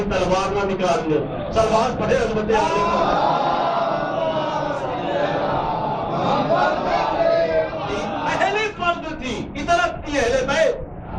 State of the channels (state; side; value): identical; both; correlation 1.00